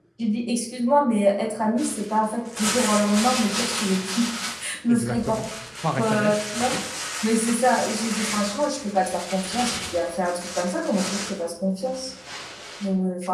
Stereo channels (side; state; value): both; identical; correlation 1.00